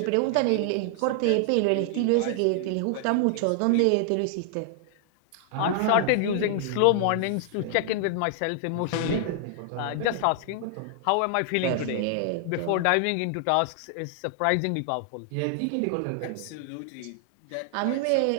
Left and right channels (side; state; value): both; different; correlation 0.00